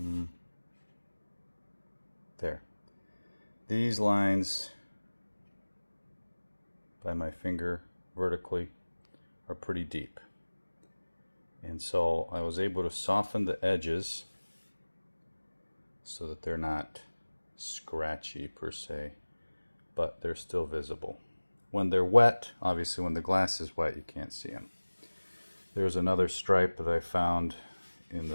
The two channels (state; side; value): inverted; both; correlation -1.00